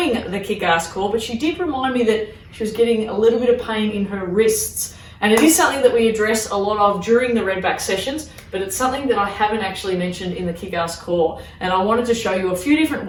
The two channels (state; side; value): identical; both; correlation 1.00